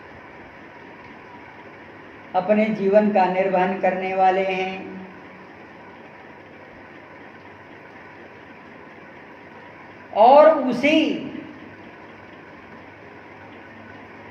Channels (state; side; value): identical; both; correlation 1.00